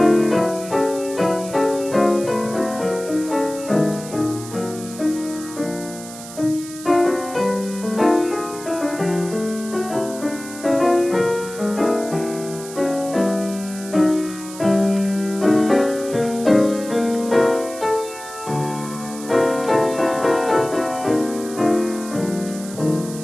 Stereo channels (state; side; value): noise; right; hiss, 14 dB below the sound